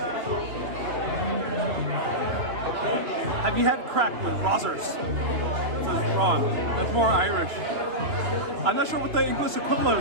Have you had crack with Rozzers? It says Ron. That's more Irish. I'm not sure what the English equivalent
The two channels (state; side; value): late; left; 2.7 ms